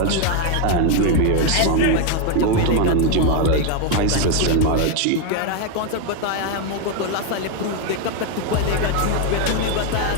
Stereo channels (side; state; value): both; different; correlation 0.01